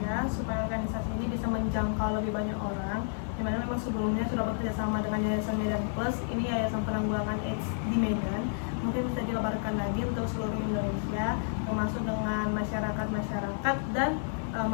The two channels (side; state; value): right; silent; 57 dB below the other